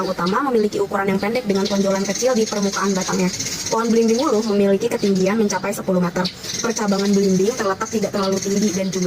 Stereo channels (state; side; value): identical; both; correlation 1.00